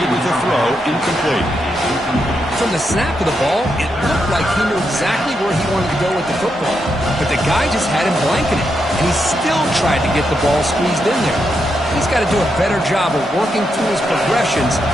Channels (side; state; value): both; normal; correlation 0.83